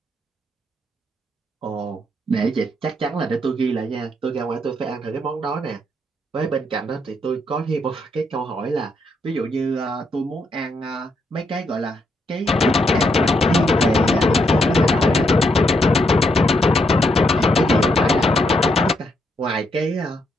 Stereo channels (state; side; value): normal; both; correlation 0.77